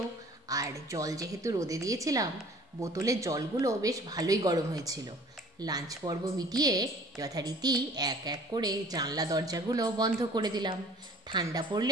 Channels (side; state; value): both; normal; correlation 0.50